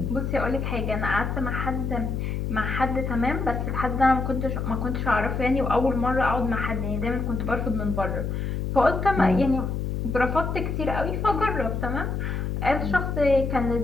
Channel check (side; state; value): left; noise; hum, 2 dB below the sound